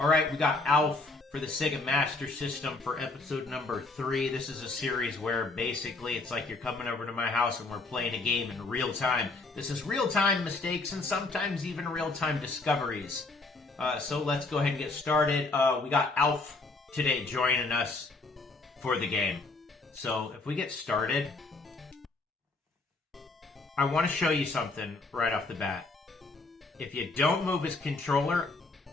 Alright, we got Alf for the Sega Master System for episode number 3. This is a series where basically it's like you're coming over to my house and we're playing a game in real time. This is real-time mistakes and sometimes even real-time discoveries. So let's go ahead and get started. We got Alf today joining us for the game. So if we get started, I want to show you something right off the bat. If you don't move his controller,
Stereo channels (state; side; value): quieter; right; 3.5 dB